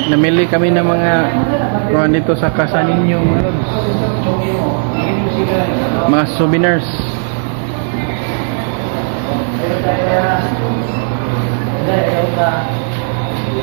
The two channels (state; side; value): silent; left; digital silence